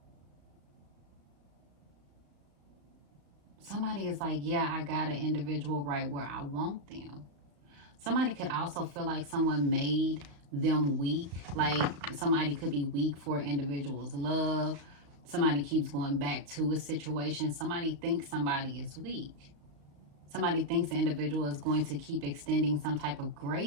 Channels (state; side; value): late; left; 35 ms